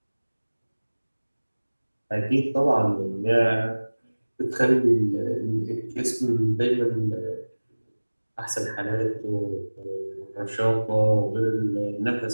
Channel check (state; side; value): inverted; both; correlation -1.00